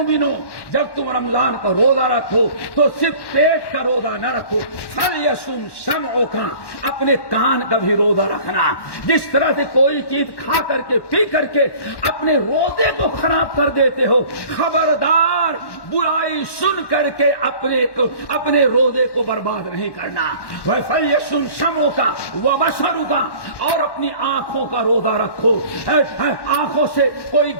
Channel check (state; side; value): late; right; 1.1 ms